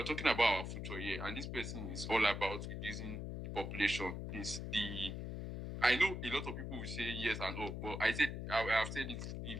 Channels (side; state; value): left; noise; hum, 5 dB below the sound